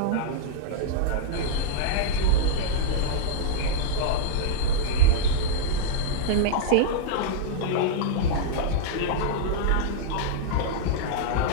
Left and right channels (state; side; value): different; both; correlation -0.02